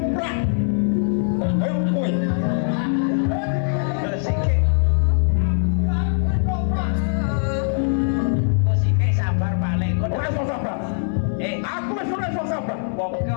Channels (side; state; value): right; silent; digital silence